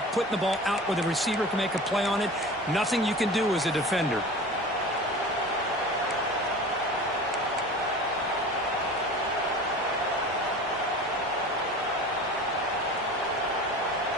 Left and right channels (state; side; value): normal; both; correlation 0.37